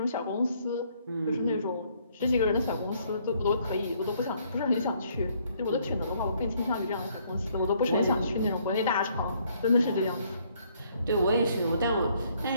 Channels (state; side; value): inverted; both; correlation -0.67